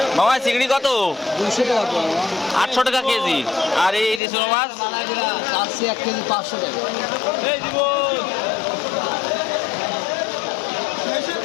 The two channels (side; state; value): right; drops out; at 4.2 s